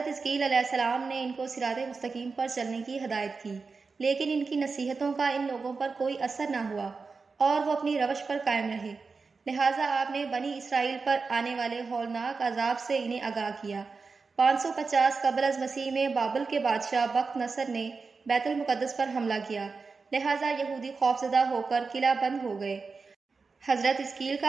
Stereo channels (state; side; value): quieter; left; 4.5 dB